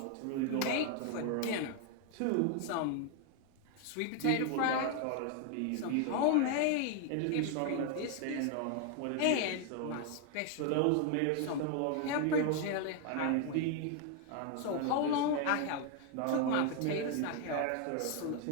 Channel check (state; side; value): different; both; correlation 0.01